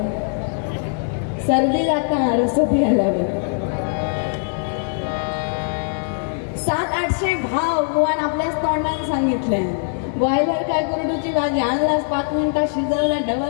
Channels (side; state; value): right; silent; 65 dB below the other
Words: सर्दी जाता रसो प्यायला 700-800 भाव गोवान आपल्याच तोंडाने सांगितलंय. बॉयलर काय कुरडूची भाजी आणलास 5 मिनिटात शिजवला